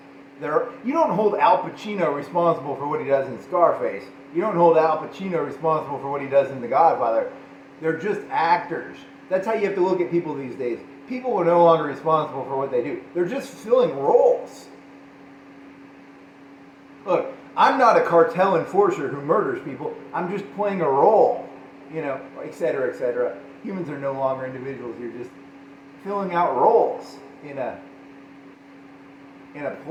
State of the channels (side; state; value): both; identical; correlation 1.00